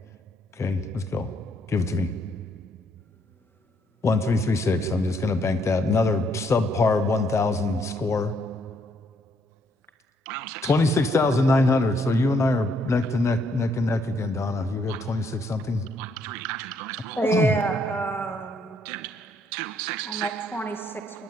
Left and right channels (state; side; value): normal; both; correlation 0.71